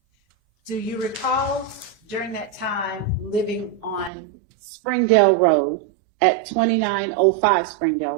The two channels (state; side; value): drops out; left; at 4.1 s